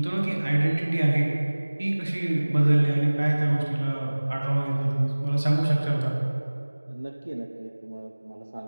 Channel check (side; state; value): both; inverted; correlation -1.00